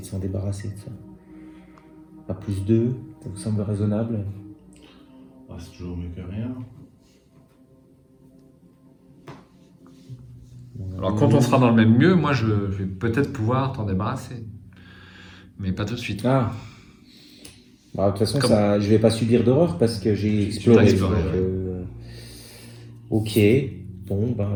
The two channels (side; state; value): both; identical; correlation 1.00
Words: s'en débarrasser de ça. À plus 2, ça vous semble raisonnable? Ah, c'est toujours mieux que rien. Alors quand on sera dans le même lieu, moi je vais peut-être pouvoir t'en débarrasser. Mais pas tout de suite. Ah. Bah, de toute façon, Comme- ça, je vais pas subir d'horreur parce que j'ai exploré. exploré, donc, Ok. Bon, bah